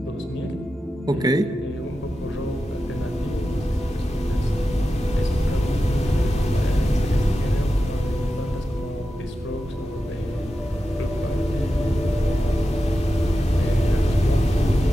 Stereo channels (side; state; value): both; normal; correlation 0.91